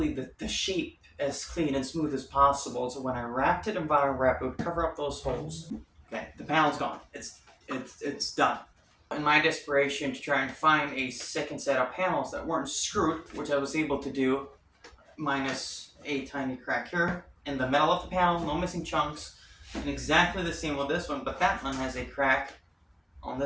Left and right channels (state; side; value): identical; both; correlation 1.00